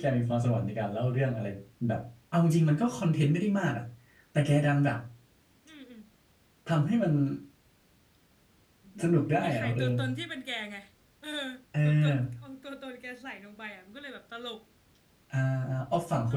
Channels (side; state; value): both; identical; correlation 1.00